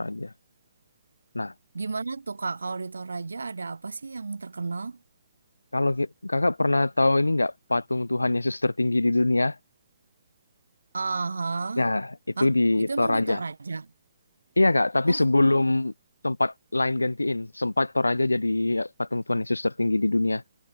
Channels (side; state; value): both; inverted; correlation -0.99